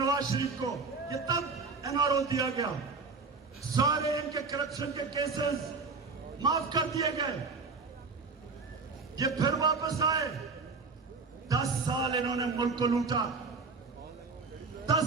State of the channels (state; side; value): quieter; left; 4.3 dB